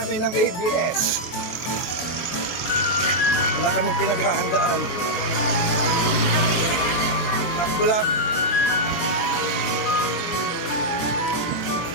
ng ABS. Wala kami pinaghahandaan. Takbo lang.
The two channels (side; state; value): right; late; 23 ms